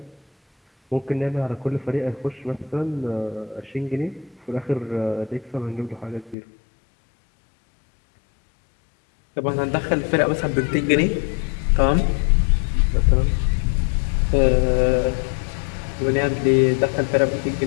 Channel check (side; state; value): right; drops out; at 6.4 s